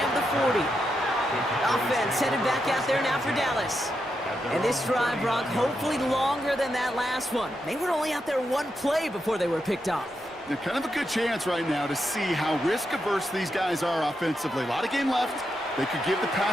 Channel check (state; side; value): normal; both; correlation 0.84